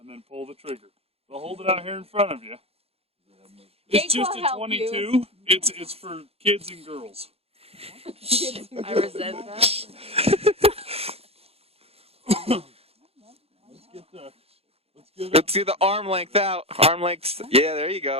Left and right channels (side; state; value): left; late; 0.29 ms